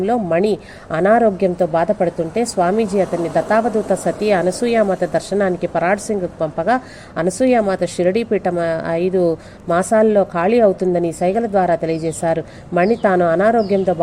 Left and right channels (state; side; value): identical; both; correlation 1.00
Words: మణి అనారోగ్యంతో బాధపడుతుంటే స్వామీజీ అతన్ని దత్తావధూత సతీ అనసూయామాత దర్శనానికి పరాడ్ సింగ్ పంపగా అనసూయామాత షిరిడీ పీఠం 5 మాసాల్లో ఖాళీ అవుతుందని సైగల ద్వారా తెలియజేశారు. మణి తాను అనారోగ్యంతో